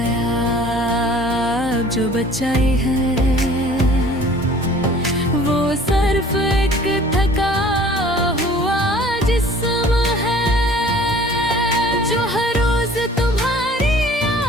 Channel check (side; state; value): both; normal; correlation 0.50